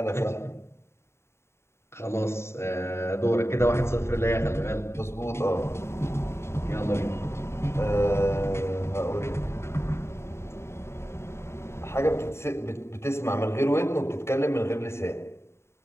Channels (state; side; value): late; right; 0.13 ms